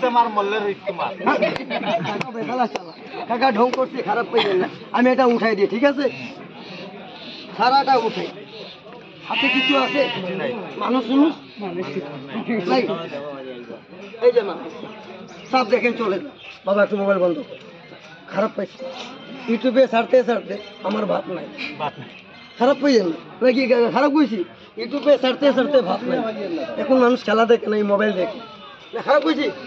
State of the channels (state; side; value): identical; both; correlation 1.00